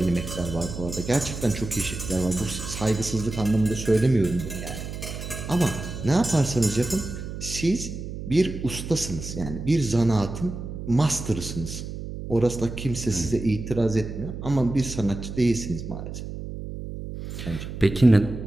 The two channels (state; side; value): noise; right; hum, 8 dB below the sound